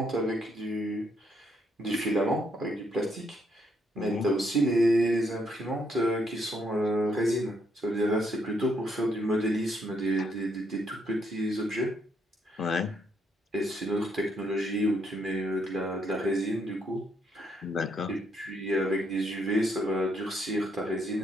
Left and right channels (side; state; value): both; normal; correlation 0.74